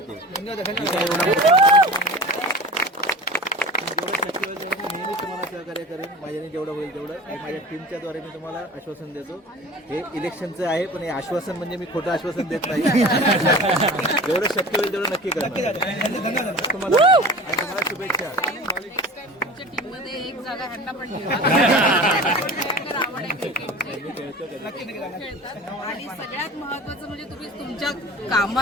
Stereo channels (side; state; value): both; normal; correlation 0.37